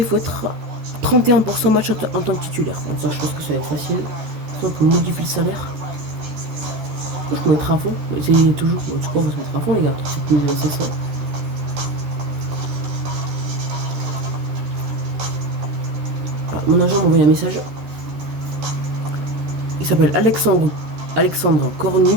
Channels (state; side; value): late; left; 13 ms